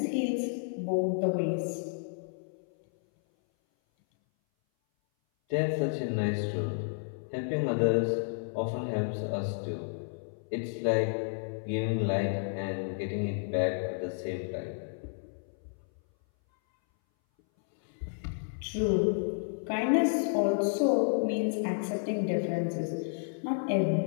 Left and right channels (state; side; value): silent; right; 57 dB below the other